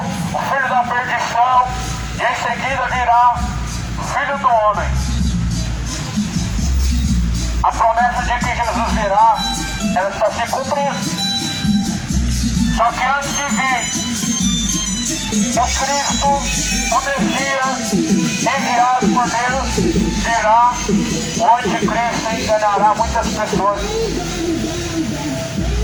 o filho da perdição, e em seguida virá o filho do homem. A promessa de que Jesus virá, ela está se cumprindo. Só que antes de vir o Cristo, o Messias, enviado por Deus, virá o anticristo e enganará muitas pessoas.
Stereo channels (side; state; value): both; identical; correlation 1.00